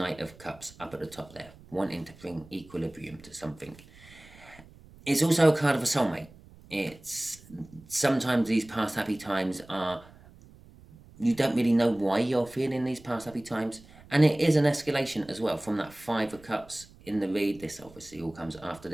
of Cups up at the top there, wanting to bring equilibrium to something. It's also a card of a soulmate. It's sometimes these past happy times are, you don't really know why you're feeling these past happy times, and it is an escalation as well from that Five of Cups in the read. This obviously all comes after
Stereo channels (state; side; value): noise; right; rumble, 23 dB below the sound